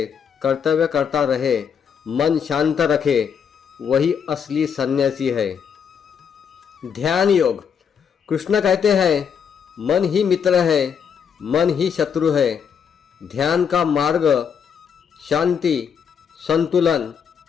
कर्तव्य करता रहे, मन शांत रखे, वही असली सन्यासी है। ध्यान योग। कृष्ण कहते हैं, मन ही मित्र है, मन ही शत्रु है। ध्यान का मार्ग शांति, संतुलन,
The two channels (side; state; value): right; quieter; 7.2 dB